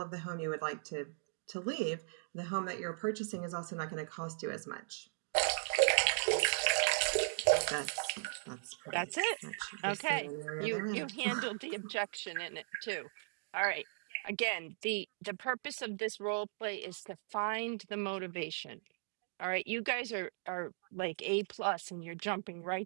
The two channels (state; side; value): silent; left; digital silence